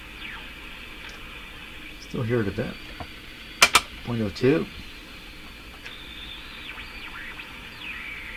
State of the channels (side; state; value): both; identical; correlation 1.00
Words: Still hear it a bit. 0.02.